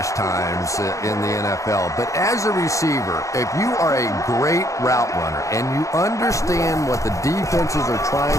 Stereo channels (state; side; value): late; right; 0.15 ms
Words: times in the NFL, but as a receiver, if you are a great route runner and you understand what the defenses are trying